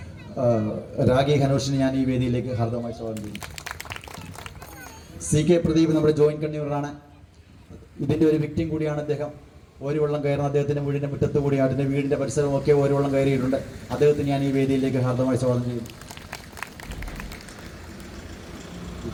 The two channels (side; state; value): both; identical; correlation 1.00